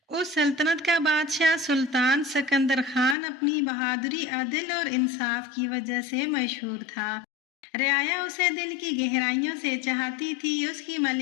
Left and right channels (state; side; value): drops out; right; at 3.2 s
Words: اس سلطنت کا بادشاہ سلطان سکندر خان اپنی بہادری، عدل اور انصاف کی وجہ سے مشہور تھا۔ رعایا اسے دل کی گہرائیوں سے چاہتی تھی۔ اس کی